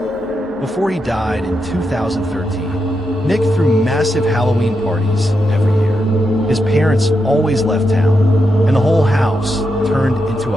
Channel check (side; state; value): both; normal; correlation 0.85